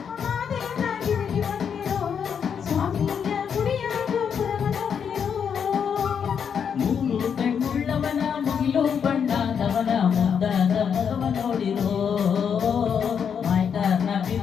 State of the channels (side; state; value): right; quieter; 7.3 dB